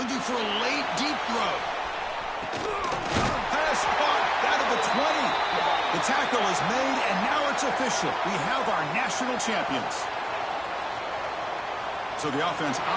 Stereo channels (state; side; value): identical; both; correlation 1.00